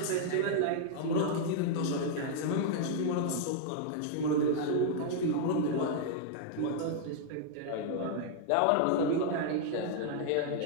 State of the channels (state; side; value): different; both; correlation -0.01